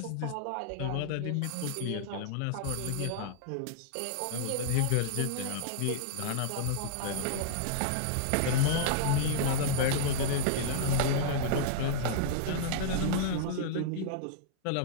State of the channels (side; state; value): both; different; correlation -0.02